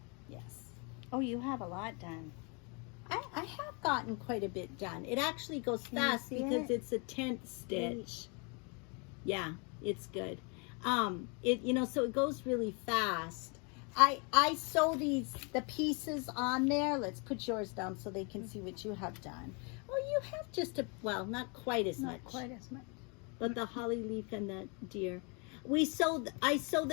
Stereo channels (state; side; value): quieter; right; 33.9 dB